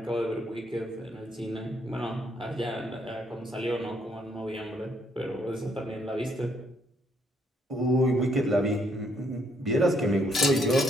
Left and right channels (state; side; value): normal; both; correlation 0.71